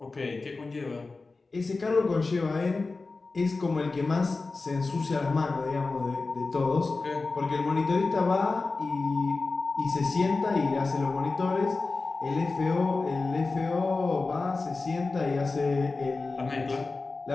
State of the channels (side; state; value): right; quieter; 3.7 dB